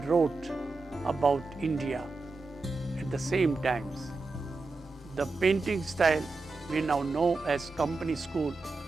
wrote about India at the same times. The painting style we now know as company school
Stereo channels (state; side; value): quieter; left; 3.6 dB